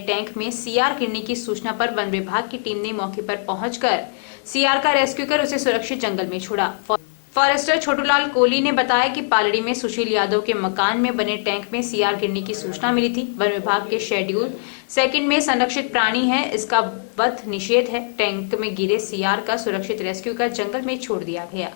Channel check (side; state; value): right; silent; digital silence